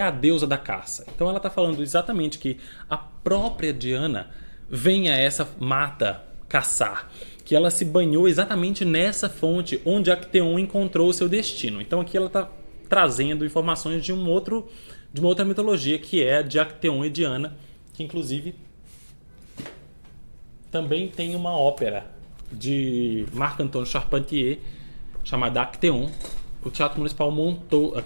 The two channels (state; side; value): inverted; both; correlation -1.00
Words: a deusa da caça. Então ela está falando exatamente que a própria Diana vem a essa mata caçar, que ela se banhou exatamente nessa fonte onde Acteon encontrou o seu destino. Então aqui ela está trazendo informações de uma outra mitologia, que é a de Acteon e Diana, que inclusive também tem uma ópera de Marc-Antoine Charpentier chamada Acteon. O Teatro Municipal